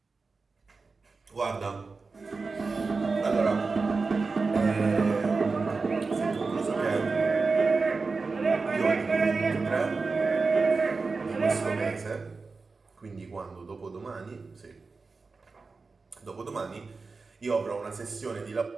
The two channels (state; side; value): quieter; left; 4.2 dB